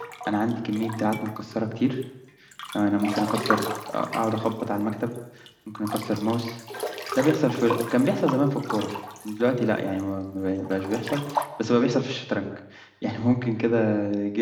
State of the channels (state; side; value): identical; both; correlation 1.00